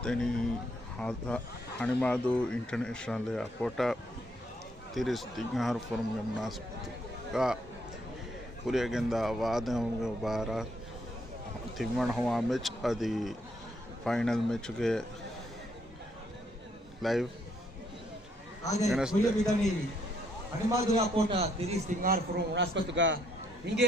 హణిమాదు ఇంటర్నేషనల్ ఏర్పోర్ట్ తిరిస్ తింగార్ ఫోరం నాస్పత్తుగా ಕುರಿಯಗೆಂದ ವಾದಂಗೆ ಬಾರ ತಿಮ್ಮಣ ಹವಾ ಮ್ಯಾಚ್ ಅದು ಫೈನಲ್ ಮ್ಯಾಚ್ಗೆ ಲೈವ್ ಹಣಿಮಾದು ಏರ್ಪೋರ್ಟ್ ತಿರಿಸ್ ತಿಂಗಾರ್ ಫೋರಂ ನಾಸ್ಪತ್ತುಗ ಹಿಂಗೆ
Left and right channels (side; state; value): both; normal; correlation 0.71